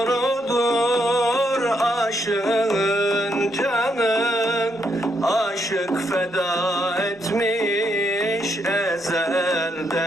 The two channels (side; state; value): both; normal; correlation 0.77